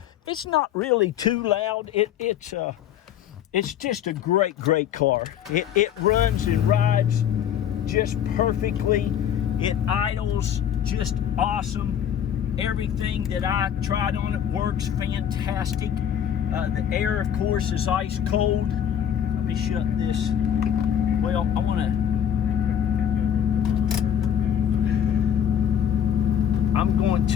It's not really too loud. It's just a great car. It runs and rides just perfectly. It idles just awesome. Everything that I tried on it works fantastic. The air, of course, is ice cold. Let me shut this. Well, I want to. I'm going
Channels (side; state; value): right; quieter; 9.5 dB